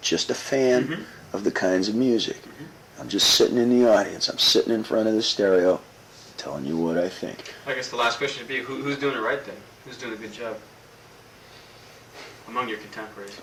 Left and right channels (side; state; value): both; identical; correlation 1.00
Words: a fan of the kinds of music. I'm just sitting in the audience. I'm sitting in front of the stereo telling you what I think. I guess the last question would be, who's doing it right then? Who's doing a good job among your contemporaries?